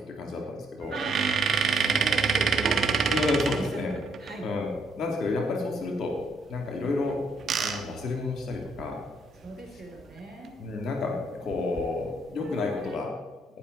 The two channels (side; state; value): both; normal; correlation 0.71